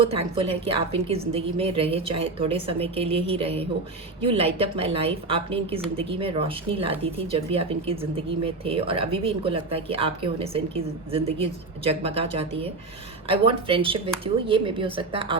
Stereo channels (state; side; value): quieter; left; 3.4 dB